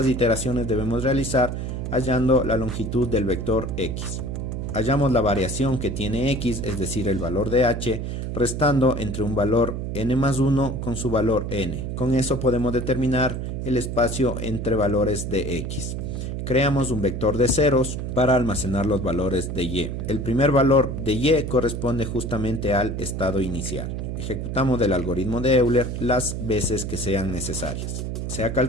iteraciones debemos realizar hallando la longitud del vector x. Hallamos la variación que tiene x, es decir, el valor de h, restando entre un valor n más 1 con su valor n. Con eso podemos determinar el espacio entre valores de x. Creamos un vector de ceros para almacenar los valores de y. El primer valor de y corresponde justamente al estado inicial. Ejecutamos el algoritmo de Euler las veces que sean necesarias. Se ha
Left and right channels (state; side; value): noise; right; hum, 4 dB below the sound